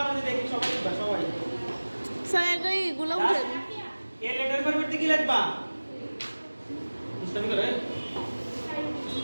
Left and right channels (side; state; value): both; inverted; correlation -1.00